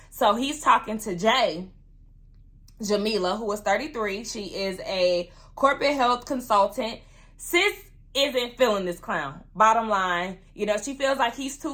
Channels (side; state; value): both; identical; correlation 1.00